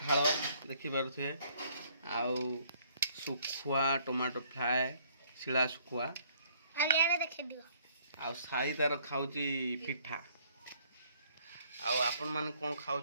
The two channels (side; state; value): both; inverted; correlation -0.63